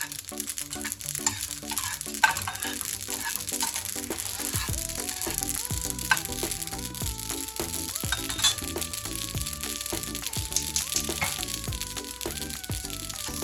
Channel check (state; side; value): identical; both; correlation 1.00